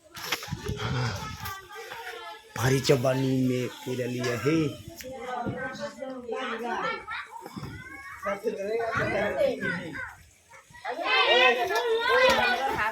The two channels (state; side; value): identical; both; correlation 1.00